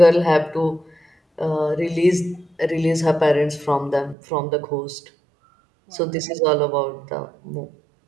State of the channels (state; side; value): drops out; left; at 4.2 s